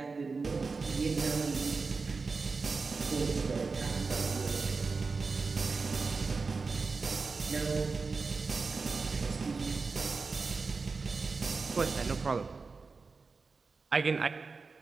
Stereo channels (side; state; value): left; quieter; 4.4 dB